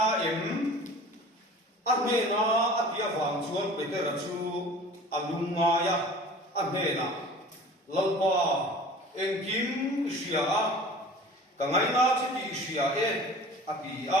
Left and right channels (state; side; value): normal; both; correlation 0.43